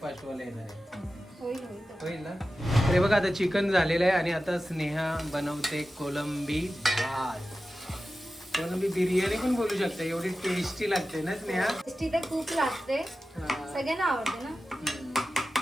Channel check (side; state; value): both; normal; correlation 0.94